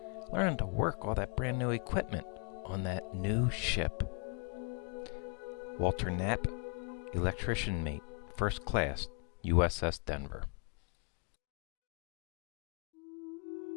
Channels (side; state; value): right; quieter; 37.9 dB